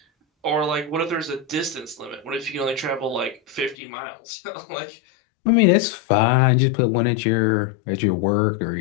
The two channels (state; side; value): drops out; right; at 3.8 s